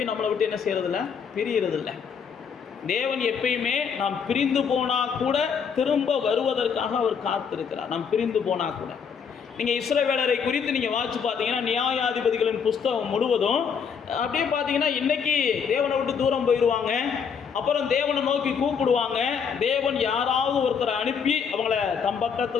நம்மளை விட்டு என்ன செய்யறதில்ல, பிரியறதில்லை. தேவன் எப்பயுமே நாம் பிரிந்து போனால் கூட திரும்ப வருவதற்காக அவர் காத்திருக்கிறார். நாம் பிரிந்து போனால் கூட நீங்கள் இஸ்ரவேலரை குறித்து நீங்கள் வாசித்து பார்த்தீங்கன்னா, நியாயாதிபதிகளின் புஸ்தகம் முழுவதும் அப்படியே பார்த்தீங்கன்னா, இன்றைக்கி தேவனை விட்டு தூரம் போயிடுவாங்க, அப்புறம் தேவனை நோக்கி கூப்பிடுவாங்க, தேவன் யாராவது ஒருத்தரை அனுப்பி அவங்கள தம்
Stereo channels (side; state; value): right; quieter; 6.6 dB